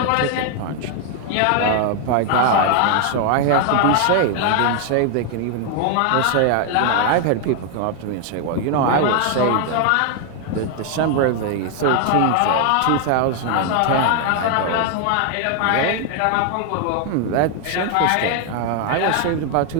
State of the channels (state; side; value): different; both; correlation 0.00